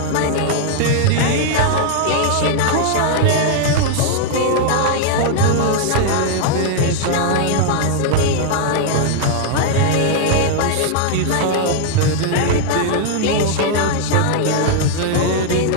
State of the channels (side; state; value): both; different; correlation -0.01